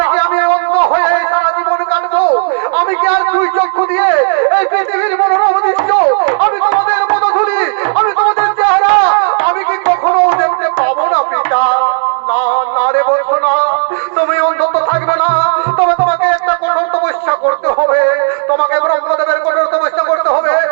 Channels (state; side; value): silent; left; digital silence